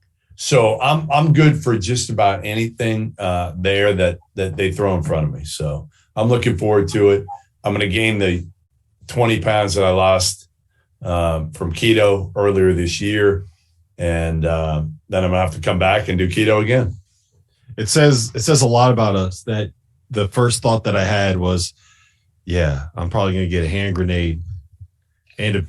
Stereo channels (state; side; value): identical; both; correlation 1.00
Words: So I'm good for just about anything there that they throw in front of me. So I'm looking forward to it. I'm going to gain the 20 pounds that I lost from keto earlier this year. And then I'm going to have to come back and do keto again. It says a lot about us that the first thought that I had was, yeah, I'm probably going to get a hand grenade and a